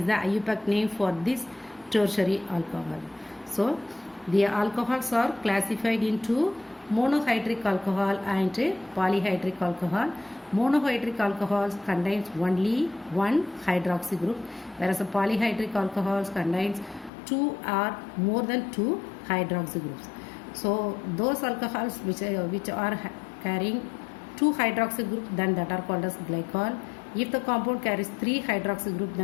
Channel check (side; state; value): right; drops out; at 17.1 s